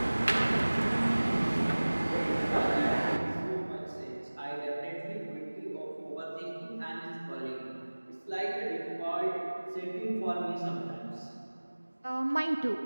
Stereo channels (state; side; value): inverted; both; correlation -1.00